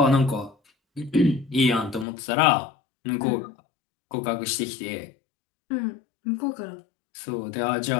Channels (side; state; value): right; drops out; at 2.1 s